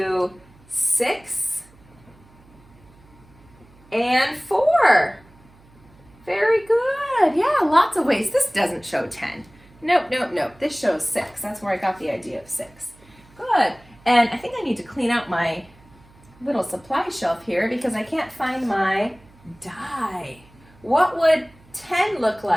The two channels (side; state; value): right; noise; hum, 27 dB below the sound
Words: 6, and 4. Very good. Yeah, lots of ways. This doesn't show 10. Nope, nope, nope. This shows 6. That's where I got the idea of 6. Good. And I think I need to clean out my little supply shelf here because I can't find my die. What would 10 look